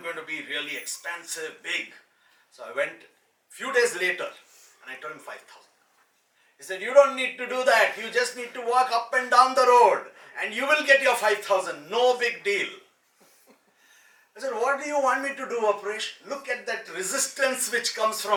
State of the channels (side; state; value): both; identical; correlation 1.00